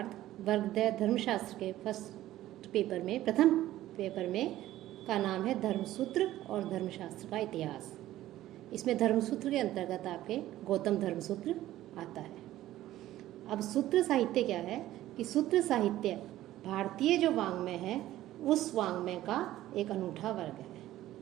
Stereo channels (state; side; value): quieter; left; 14.5 dB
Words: वर्ग द धर्मशास्त्र के फर्स्ट पेपर में प्रथम पेपर में का नाम है धर्मसूत्र और धर्मशास्त्र का इतिहास। इसमें धर्मसूत्र के अंतर्गत आपके गौतम धर्मसूत्र आता है। अब सूत्र साहित्य क्या है कि सूत्र साहित्य भारतीय जो वाङ्मय है उस वाङ्मय का एक अनूठा वर्ग